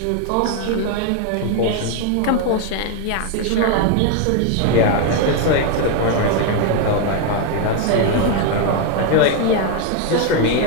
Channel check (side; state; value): both; different; correlation 0.01